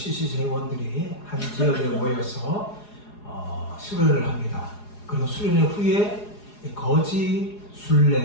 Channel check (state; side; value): late; right; 4.8 ms